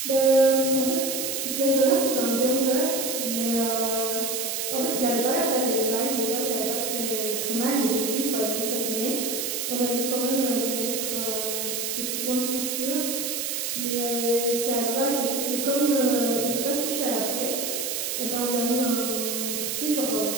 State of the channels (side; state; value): right; noise; hiss, 2 dB below the sound